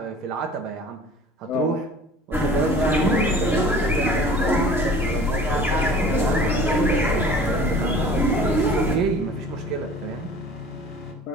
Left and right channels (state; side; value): normal; both; correlation 0.46